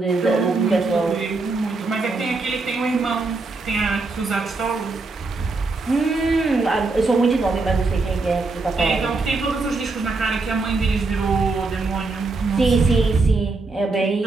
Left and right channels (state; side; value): quieter; left; 3.6 dB